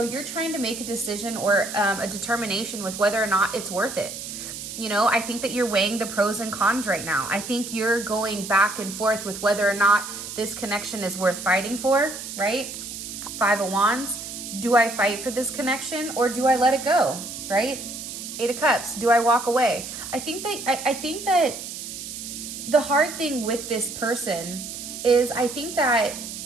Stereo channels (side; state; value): right; noise; hiss, 9 dB below the sound